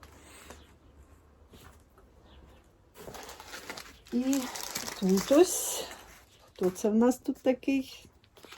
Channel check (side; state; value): both; identical; correlation 1.00